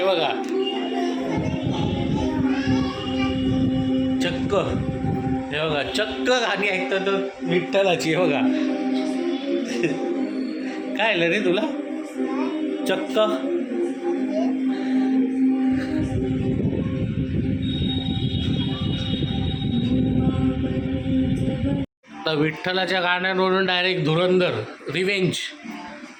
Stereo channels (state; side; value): identical; both; correlation 1.00